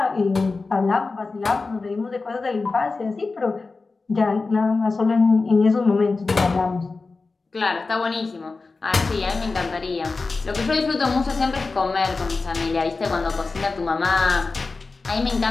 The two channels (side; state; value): right; quieter; 3.9 dB